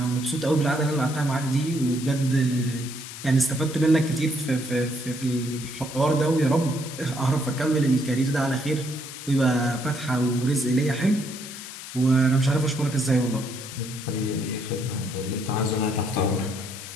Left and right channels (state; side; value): noise; left; hiss, 12 dB below the sound